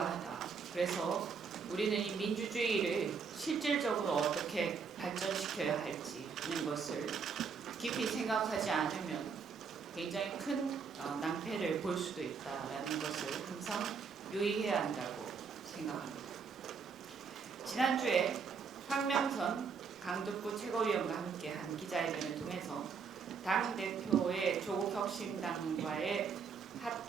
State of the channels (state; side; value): quieter; left; 5.8 dB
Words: 그래서 우리는 이 민주주의를 실질적으로 어떻게 발전시켜야 할지는 것을 깊이 생각하지 않으면 굉장히 큰 낭패를 볼 수도 있다라는 것을 항상 유의해야 한다고 생각합니다. 지난주에 황명선 강북구 최고위원과 함께한 기자회견을 통해서 당대표의 조국혁신당과의